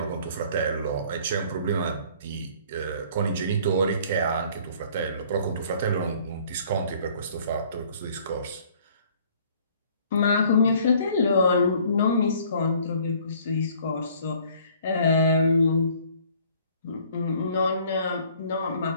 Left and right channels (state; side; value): inverted; both; correlation -0.56